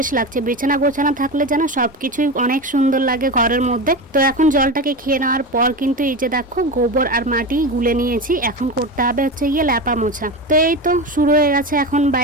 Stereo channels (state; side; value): normal; both; correlation 0.22